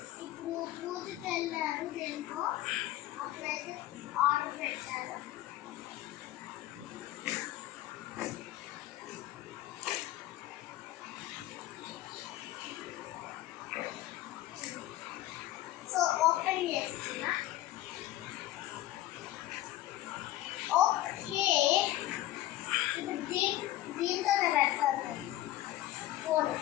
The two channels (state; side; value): quieter; right; 15.2 dB